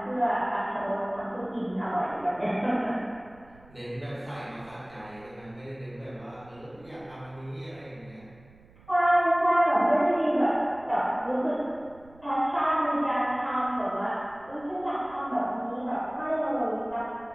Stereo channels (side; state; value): right; noise; rumble, 25 dB below the sound